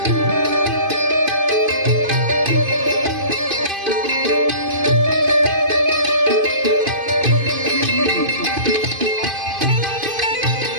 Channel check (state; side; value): late; left; 2.5 ms